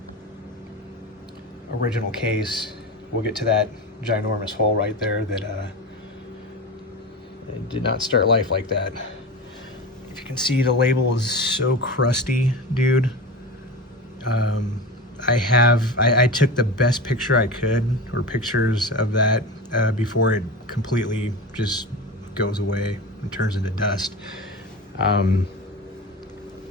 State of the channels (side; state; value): both; normal; correlation 0.27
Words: Original case. We'll get to that ginormous hole right there that it did not start life like that. If you can see, the label is so crusty, dude. I took the best picture I could, or pictures of that before it completely just goes away and turns into dust.